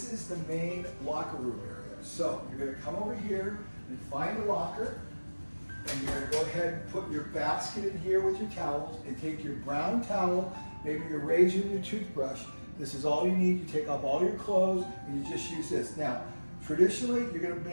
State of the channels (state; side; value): inverted; both; correlation -1.00